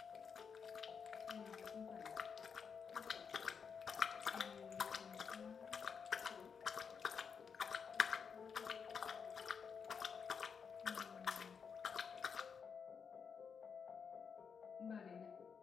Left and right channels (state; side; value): quieter; right; 6.3 dB